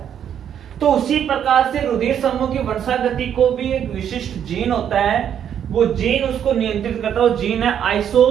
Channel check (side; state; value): left; quieter; 9.1 dB